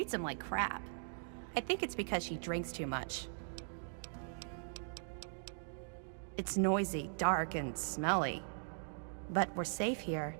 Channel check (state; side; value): silent; left; digital silence